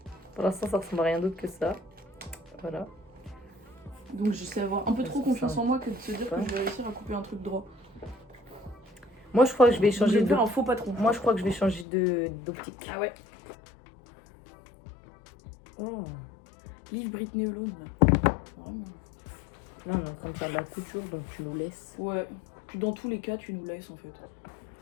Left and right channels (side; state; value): right; drops out; at 11.9 s